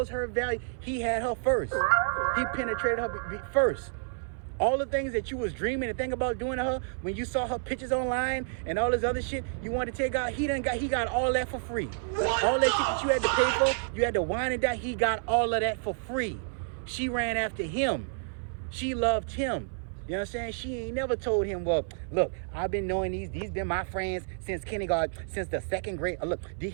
her value. He had her first. He penetrated her first. All the things that you was dreaming and think about doing to her, when you saw her pictures online and all this other shit you wanted to take out, he got all that for free. All that shit that you had to pay for, you had to wine and die, he got all of that for free. She ran after him. She loved him. You know what I'm saying? She ain't never told him, well, look, I've been knowing these been my friends since kindergarten, since the second grade. Look,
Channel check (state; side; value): silent; left; 58 dB below the other